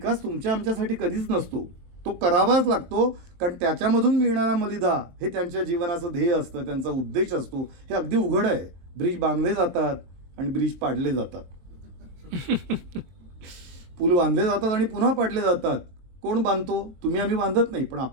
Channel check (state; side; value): late; left; 23 ms